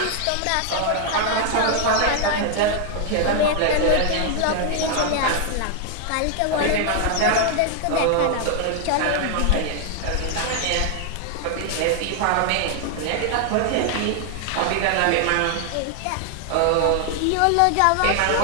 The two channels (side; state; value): both; different; correlation 0.00